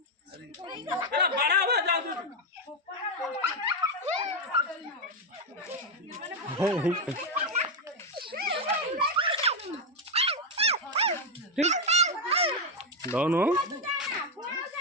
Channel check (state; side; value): normal; both; correlation 0.03